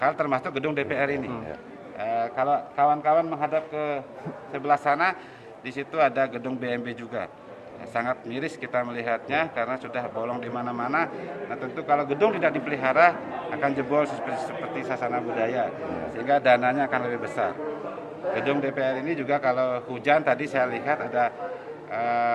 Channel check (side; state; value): both; identical; correlation 1.00